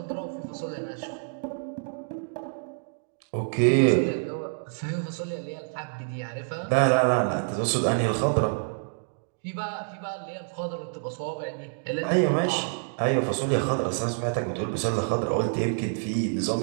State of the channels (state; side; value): silent; left; digital silence